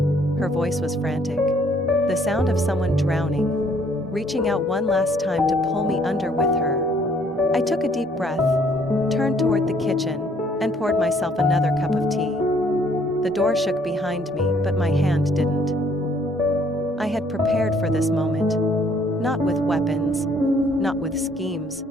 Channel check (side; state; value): both; normal; correlation 0.63